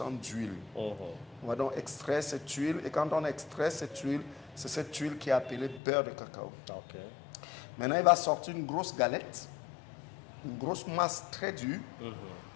d'huile. On va donc extraire cette huile et quand on extrait cette huile, c'est cette huile qui est appelée beurre de cacao. Maintenant, il va sortir une grosse galette, une grosse masse très dure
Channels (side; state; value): right; drops out; at 5.8 s